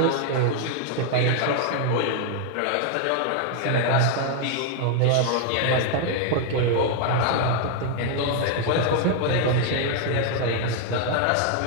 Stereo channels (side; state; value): both; different; correlation 0.00